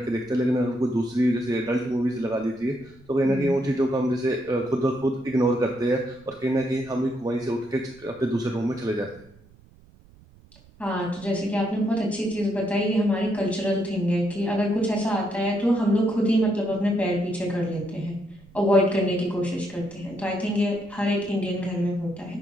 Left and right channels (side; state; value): right; noise; rumble, 26 dB below the sound